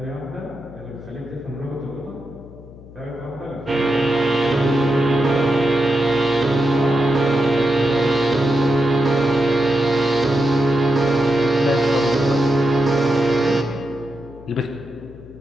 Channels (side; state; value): left; noise; hum, 19 dB below the sound